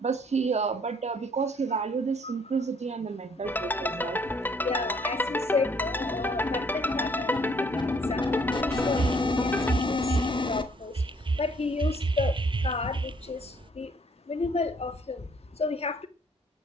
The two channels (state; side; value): normal; both; correlation 0.63